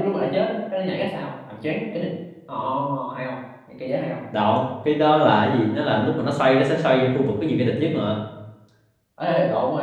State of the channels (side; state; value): both; identical; correlation 1.00